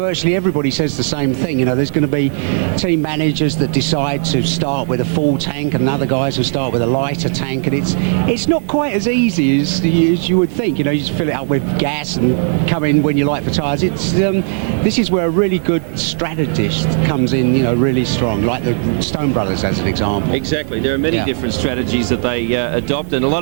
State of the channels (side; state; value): left; silent; digital silence